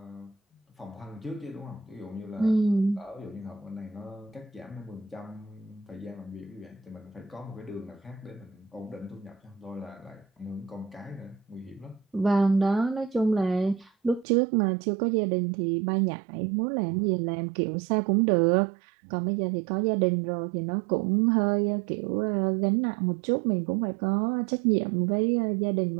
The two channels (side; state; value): left; drops out; at 14.2 s